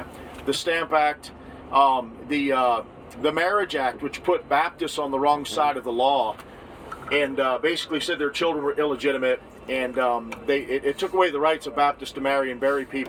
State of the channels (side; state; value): both; identical; correlation 1.00